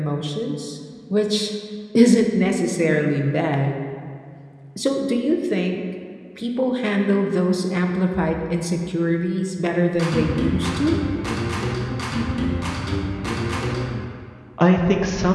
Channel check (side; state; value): both; identical; correlation 1.00